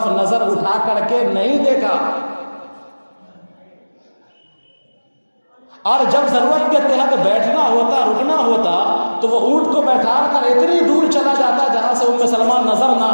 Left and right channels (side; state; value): both; inverted; correlation -1.00